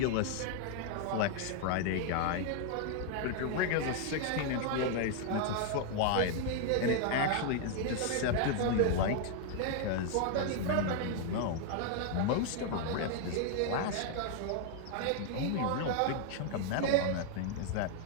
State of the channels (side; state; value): both; different; correlation 0.00